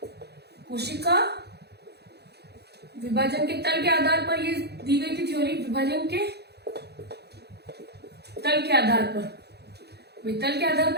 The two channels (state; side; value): late; left; 0.48 ms